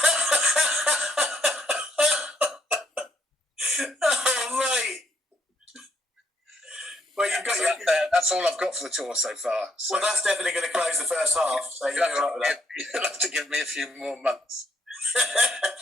Oh, mate. Well, that's all I've got for the tour so far. So. Well, that's definitely going to close the first half. So you'll have to give me a few more months.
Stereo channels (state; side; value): normal; both; correlation 0.71